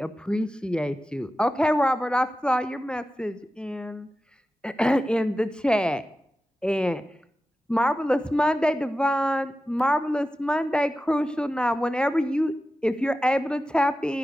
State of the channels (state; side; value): normal; both; correlation 0.93